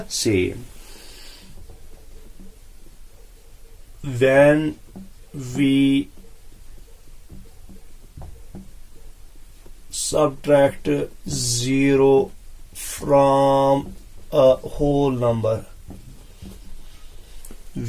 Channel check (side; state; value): both; identical; correlation 1.00